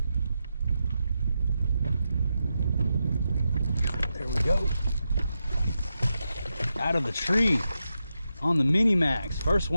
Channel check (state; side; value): inverted; both; correlation -0.88